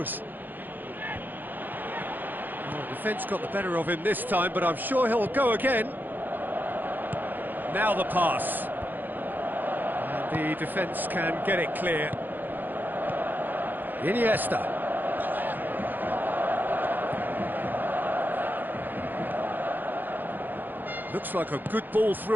Well, defence got the better of him this time, but I'm sure he'll go again. Now the pass. And the defence can get it clear. Iniesta. Looks like a good ball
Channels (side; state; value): left; late; 0.088 ms